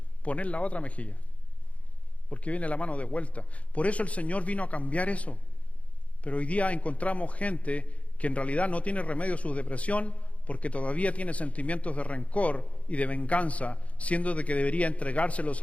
poner la otra mejilla. Porque viene la mano de vuelta. Por eso el Señor vino a cambiar eso. Pero hoy día encontramos gente que en realidad no tiene remedio a su depresión porque todavía tiene sentimientos de rencor y de venganza, siendo de que debería entregárselos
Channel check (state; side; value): late; right; 0.065 ms